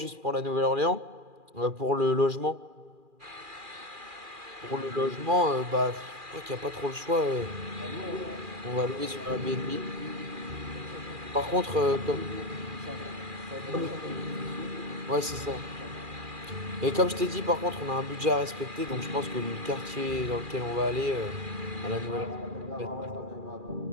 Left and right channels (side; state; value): left; late; 2.4 ms